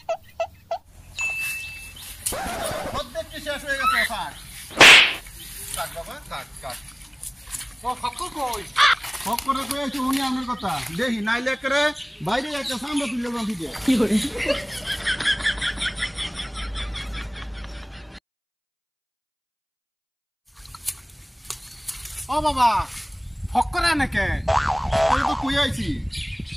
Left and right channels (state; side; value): identical; both; correlation 1.00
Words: অর্ধেকটি শেষ হয়ে গেছে। কাট বাবা কাট কাট। ফক্কর কই? ফক্করে কই আছে উনি আমার কথা দেখি, নাইলে করে বাইরে একটা সামনে তুলে দেন দিতে। কি করে? ও বাবা, ফক্কর নাকি? আমি তো কই আইছি,